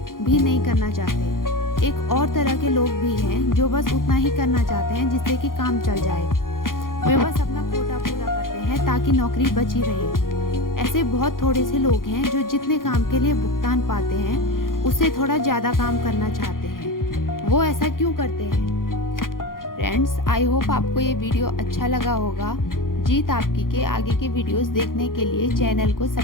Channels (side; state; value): right; late; 0.91 ms